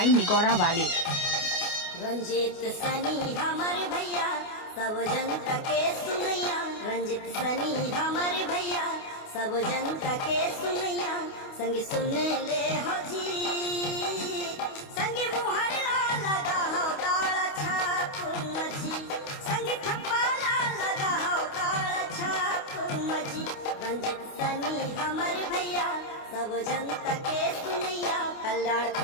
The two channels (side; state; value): right; late; 28 ms